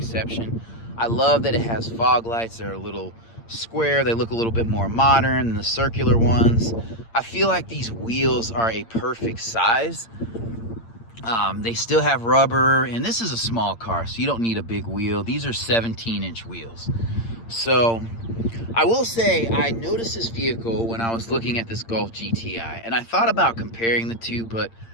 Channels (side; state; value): right; late; 8.7 ms